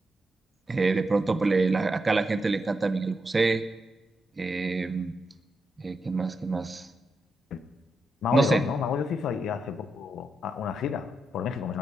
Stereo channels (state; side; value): normal; both; correlation 0.84